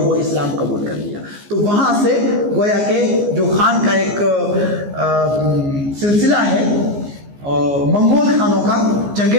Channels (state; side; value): late; left; 14 ms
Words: इस्लाम कबूल कर लिया। तो वहाँ से गोया के जो खान का एक सिलसिला है मंगोल खानों का,